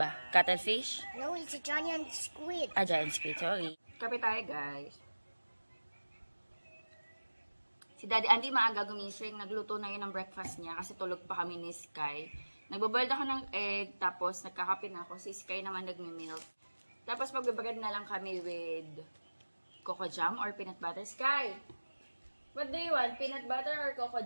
Cuttlefish? No, it's a giant squid. Giant squid, sorry. Kape tayo, guys. Si Daddy Andy maaga gumising. Nagluto na yun ng breakfast niya kasi tulog pa kami ni Sky. Nagbaboiled ako ng egg, tapos nagkakape na ako. Si Sky naman nagme-milk. Tapos magbabagad na lang kami with coco jam or peanut butter. Sky, what do you want? Peanut butter or coco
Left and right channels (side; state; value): both; inverted; correlation -1.00